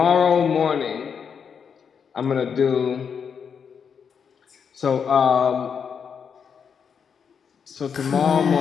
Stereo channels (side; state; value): right; quieter; 6.8 dB